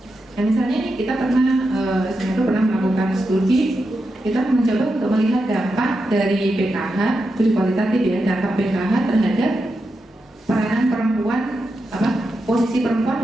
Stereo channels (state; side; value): normal; both; correlation 0.87